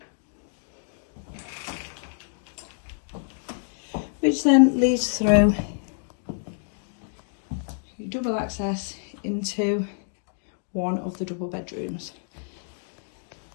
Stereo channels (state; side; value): silent; right; digital silence